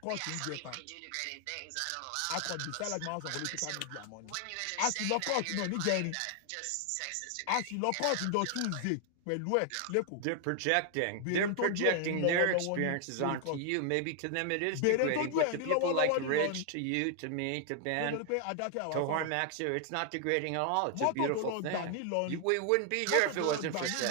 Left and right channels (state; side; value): different; both; correlation 0.00